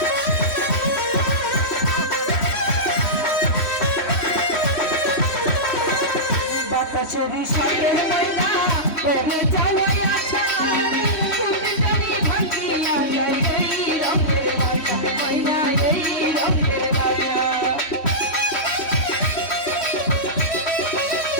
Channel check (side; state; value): right; late; 3.1 ms